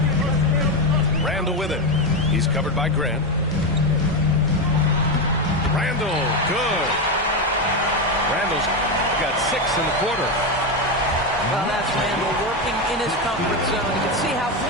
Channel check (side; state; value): both; normal; correlation 0.11